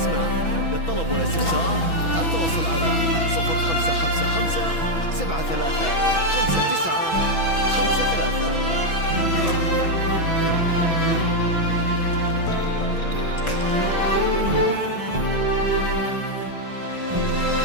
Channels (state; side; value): late; right; 6.1 ms